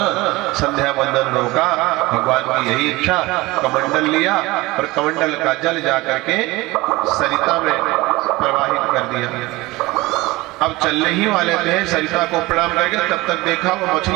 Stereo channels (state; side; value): quieter; left; 20.8 dB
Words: संध्या वंदन रोका। भगवान की यही इच्छा। कमंडल लिया और कमंडल का जल जाकर के सरिता में प्रवाहित कर दिया। अब चलने ही वाले थे, सरिता को प्रणाम करके तब तक देखा वो